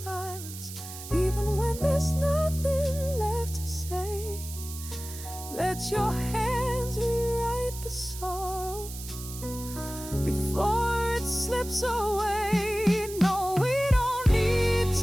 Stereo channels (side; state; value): right; noise; hiss, 12 dB below the sound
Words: even when there's nothing left to say. Let your hands rewrite the sorrow before it slips away. No, we don't need